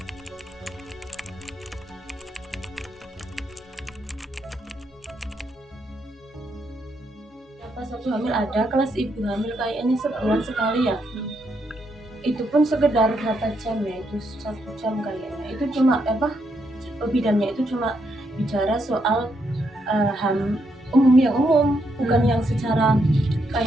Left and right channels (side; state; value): both; normal; correlation 0.78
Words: Pas aku hamil ada kelas ibu hamil kayaknya sebulan sekali ya, itu pun sekedar berapa jam ya, itu 1 jam kayaknya. Itu cuma bidannya itu cuma bicara soal umum, bukan yang secara